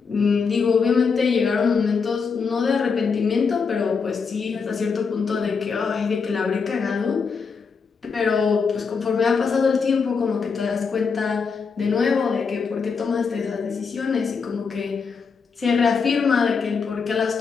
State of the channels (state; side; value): quieter; right; 5.4 dB